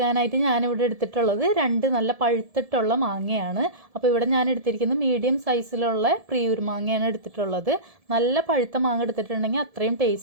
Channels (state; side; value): late; left; 1.7 ms